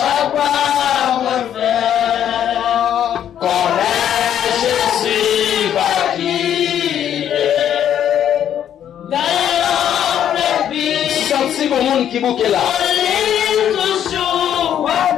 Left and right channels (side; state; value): right; quieter; 10.0 dB